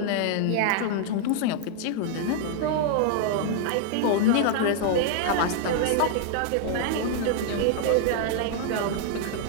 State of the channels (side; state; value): both; different; correlation 0.00